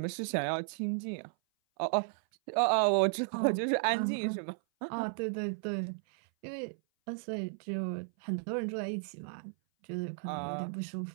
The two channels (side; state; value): left; silent; 55 dB below the other